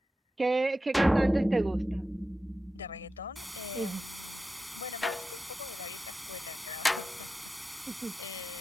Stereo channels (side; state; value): both; normal; correlation 0.92